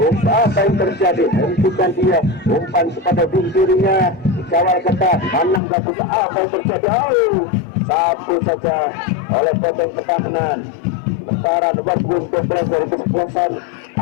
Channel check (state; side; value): drops out; right; at 5.6 s